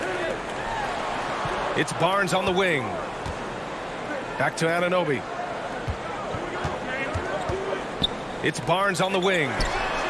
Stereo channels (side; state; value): both; identical; correlation 1.00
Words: It's Barnes on the wing. Back to Anunoby. It's Barnes on the wing.